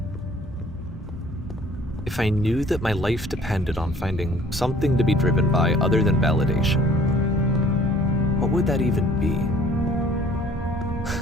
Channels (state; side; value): normal; both; correlation 0.55